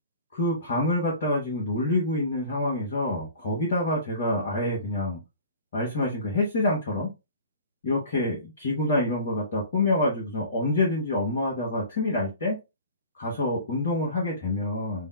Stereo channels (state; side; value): inverted; both; correlation -0.42